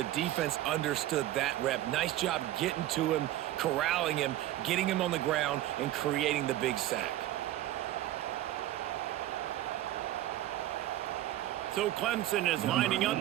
defense understood that rep. Nice job getting to him, corralling him, getting him on the ground, and creating the big sack. So Clemson is lining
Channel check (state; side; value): quieter; left; 14.1 dB